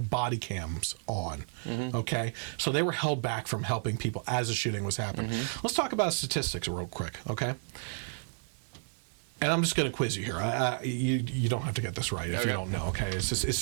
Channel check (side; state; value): left; silent; digital silence